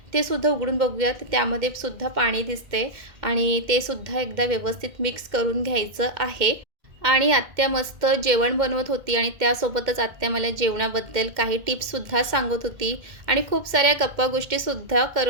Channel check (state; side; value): late; left; 2.1 ms